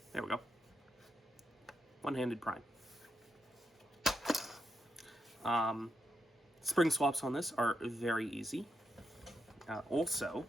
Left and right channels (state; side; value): normal; both; correlation 0.83